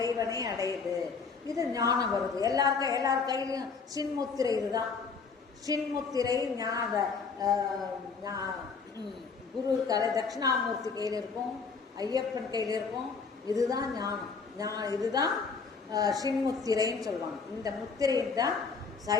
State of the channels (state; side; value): quieter; right; 5.1 dB